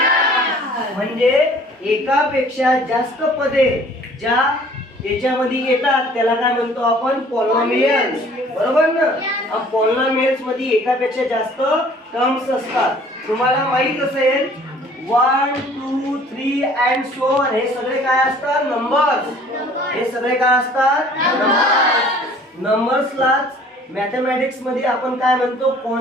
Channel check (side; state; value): both; normal; correlation 0.53